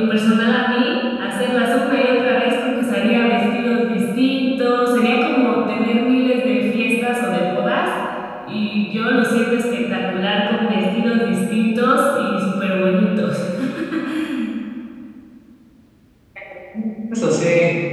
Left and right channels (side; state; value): both; identical; correlation 1.00